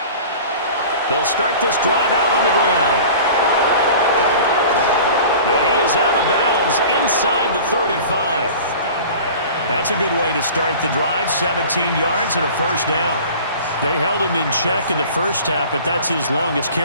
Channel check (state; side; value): inverted; both; correlation -0.41